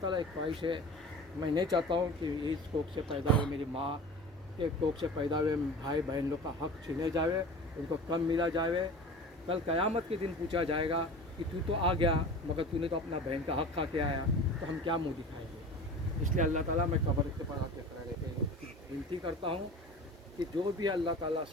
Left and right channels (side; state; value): both; normal; correlation 0.37